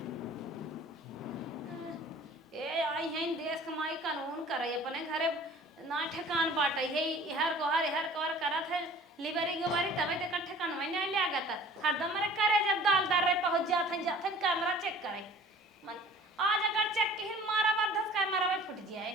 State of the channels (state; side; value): normal; both; correlation 0.47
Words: ए आई हैं देश कमाई कानून करे अपने घरे ना ठेकान बाटे है हर कोहर करत है लिबरी गोबरी तबे ते कट्ठे कानवे नहीं लागत हरदम रे करे जब दाल दार रे पहुंच जाथन कैमरा चेक करे मन आज अगर चेक के मारा बद्धस कैमरा में फुट जाए।